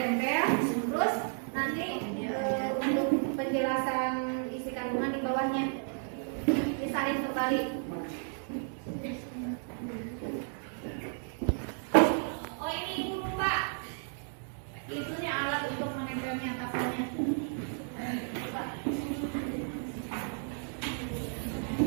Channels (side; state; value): left; silent; 55 dB below the other